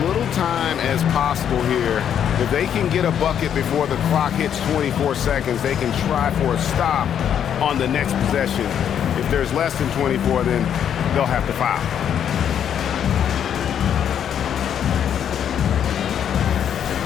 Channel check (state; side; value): quieter; right; 9.0 dB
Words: little time as possible here. If they can get a bucket before the clock hits 24 seconds, they can try for a stop on the next possession. If there's less than 24, then they'll have to foul.